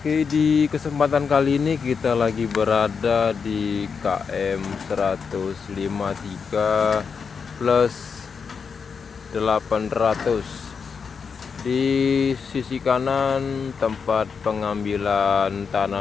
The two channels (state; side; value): quieter; right; 5.9 dB